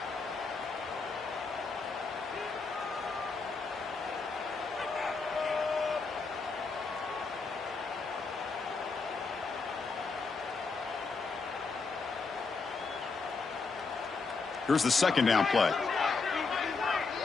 Here's the 2nd down play.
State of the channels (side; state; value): right; quieter; 4.4 dB